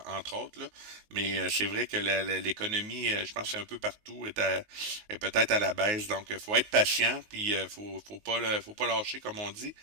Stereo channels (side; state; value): left; late; 19 ms